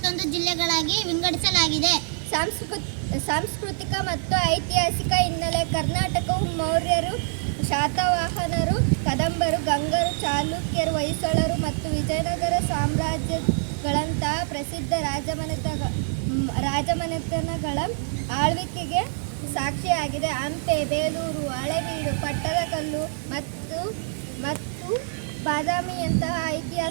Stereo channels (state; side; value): silent; left; digital silence